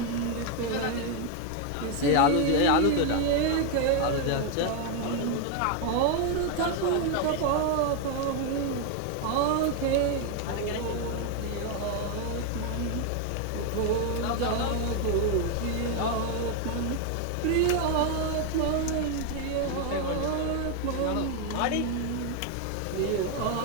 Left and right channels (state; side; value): different; both; correlation 0.01